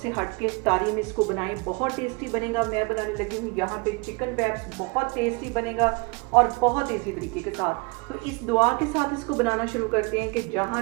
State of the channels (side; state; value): left; quieter; 29.9 dB